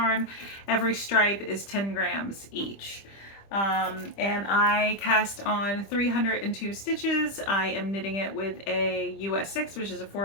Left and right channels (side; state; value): right; late; 25 ms